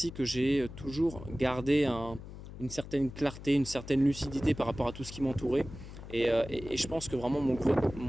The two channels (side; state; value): left; noise; hum, 13 dB below the sound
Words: que j'ai toujours gardé une certaine clarté, une certaine lucidité par rapport à tout ce qui m'entourait. Et je pense que vraiment mon